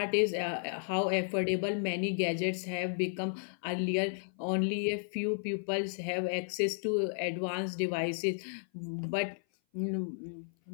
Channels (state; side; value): silent; right; 56 dB below the other